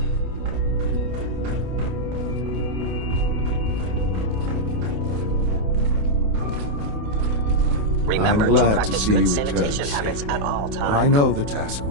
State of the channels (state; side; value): late; left; 28 ms